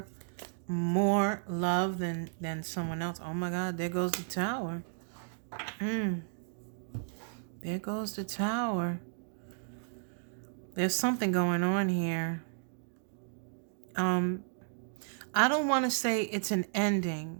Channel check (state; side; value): silent; left; digital silence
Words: more love than someone else. Oh my God, there goes the Tower. There goes the Tower. There's something going on here. I don't want to say it's an